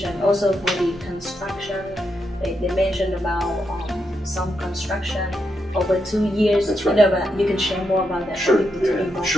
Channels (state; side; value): normal; both; correlation 0.82